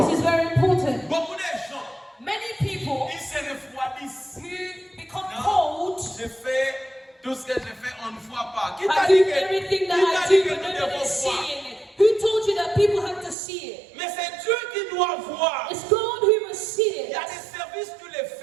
This is very important. Beaucoup de gens, Many people ils se refroidissent. who become Non, cold, je fais tout ce que je fais, on ne voit pas. Qui t'a I dit do que, everything qui that t'a I dit do, que but nous no one devons is voir? seeing it. Who told you that people have to see it? Mais c'est Dieu qui doit voir. It's God who must see Il y it. a des services que tu les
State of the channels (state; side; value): drops out; left; at 13.4 s